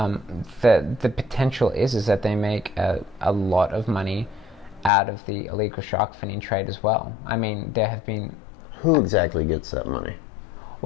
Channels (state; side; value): drops out; right; at 4.9 s